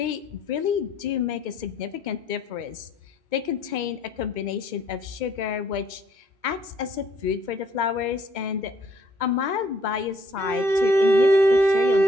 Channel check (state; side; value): late; left; 2.2 ms